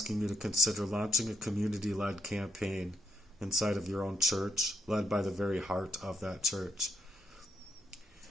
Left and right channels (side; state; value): both; normal; correlation 0.75